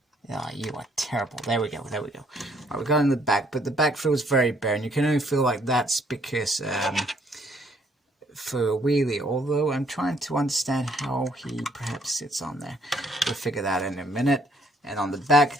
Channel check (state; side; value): normal; both; correlation 0.66